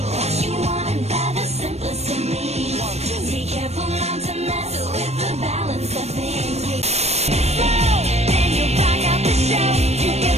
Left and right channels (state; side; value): late; left; 0.31 ms